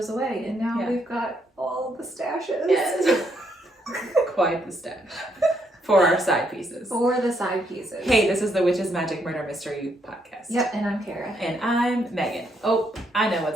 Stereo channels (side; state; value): both; normal; correlation 0.74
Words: away. And now we've got all the stashes. Yes. Quite the stash. For our side pieces. For the side pieces. Hey, this is the Witches, Magic, Murder, Mystery podcast. Yep, and I'm Kara. And I'm Megan. Oh, I know